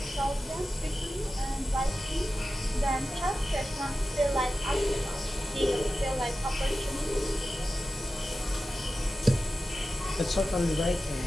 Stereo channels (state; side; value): normal; both; correlation 0.93